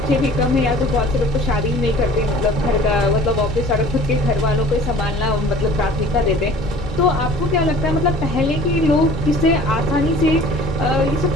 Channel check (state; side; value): normal; both; correlation 0.47